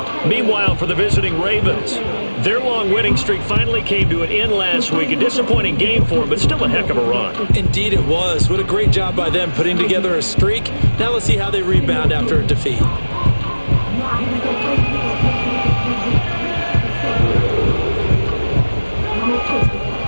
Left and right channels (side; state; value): both; inverted; correlation -1.00